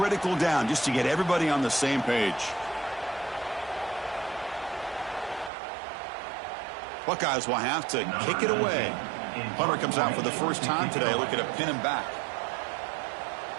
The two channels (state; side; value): drops out; left; at 5.5 s